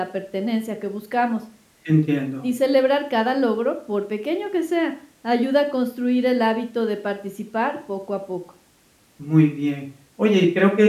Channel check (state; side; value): identical; both; correlation 1.00